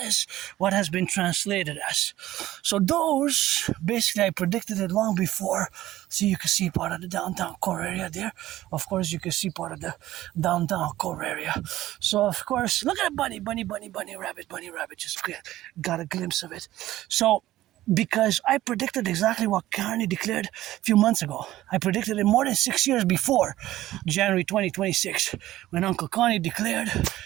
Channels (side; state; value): left; quieter; 15.1 dB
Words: is what has been translated as. So those, basically I predicted it long before. So you can see part of the downtown core area there. Of course you can see part of the downtown core area. So of course, look at a bunny, rabbit, just got a glimpse of it. So, because I predicted exactly what Carney declared a few months ago. I predicted it more than 6 years before January 2026, when Uncle Connie declared